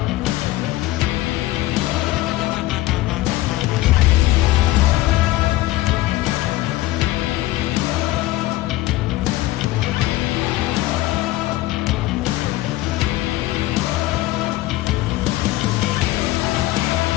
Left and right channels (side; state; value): right; quieter; 17.2 dB